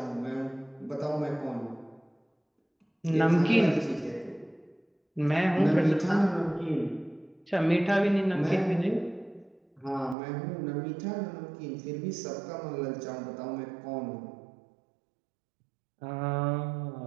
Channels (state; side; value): drops out; left; at 10.2 s